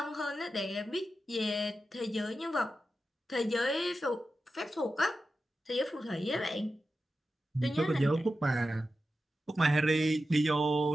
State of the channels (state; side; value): normal; both; correlation 0.91